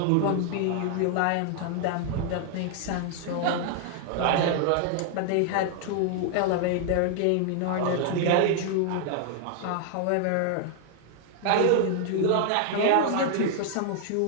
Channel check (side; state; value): both; different; correlation 0.00